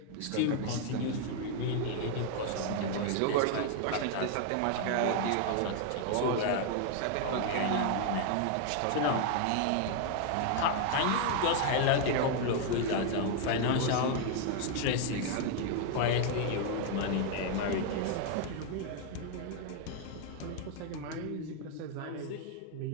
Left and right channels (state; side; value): different; both; correlation 0.00